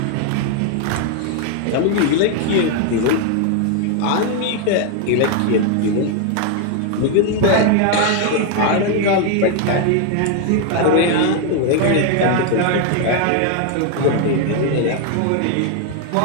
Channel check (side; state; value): both; different; correlation 0.01